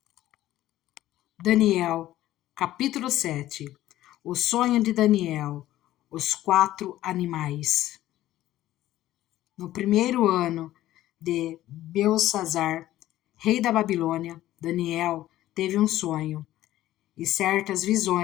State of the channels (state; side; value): quieter; right; 14.4 dB